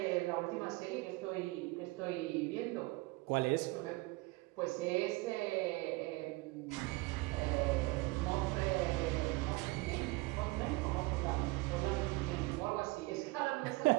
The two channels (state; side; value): quieter; left; 23.3 dB